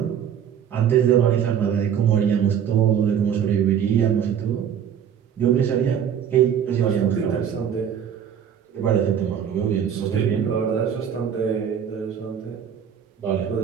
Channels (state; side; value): quieter; left; 8.5 dB